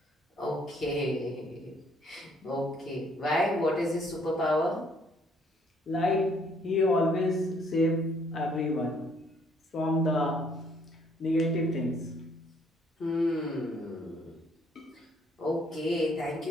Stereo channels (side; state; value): both; normal; correlation 0.65